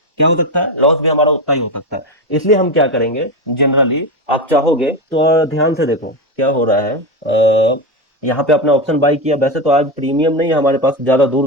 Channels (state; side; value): normal; both; correlation 0.15